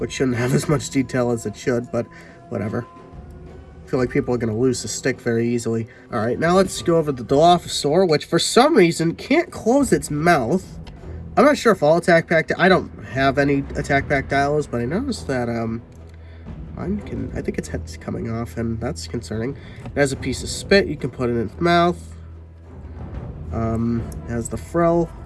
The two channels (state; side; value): identical; both; correlation 1.00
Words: shouldn't have as much detail as it should, but whatever. I feel like people are going to lose the stick very easily. Alright, now let's go over the Dilophosaur, which for some reason can't close its mouth. I'm not sure if all attack pack... I don't have any attack pack dials, but I noticed that mine I think its head's coming off, and that's concerning. It has a piece of spit you can put in its mouth. It has the frill,